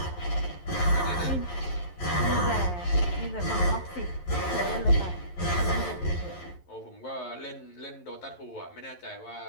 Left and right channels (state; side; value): late; right; 11 ms